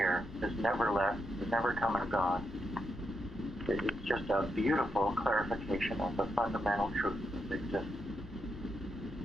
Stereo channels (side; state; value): left; noise; rumble, 16 dB below the sound